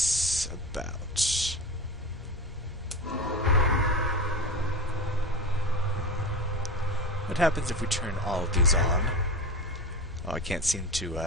about? What happens if we turn all of these on? Oh, I can't seem to,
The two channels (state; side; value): normal; both; correlation 0.25